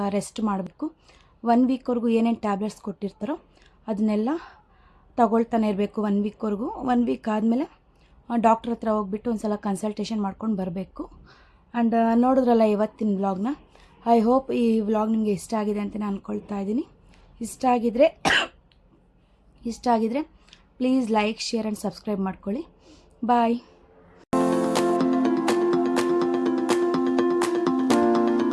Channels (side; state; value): both; identical; correlation 1.00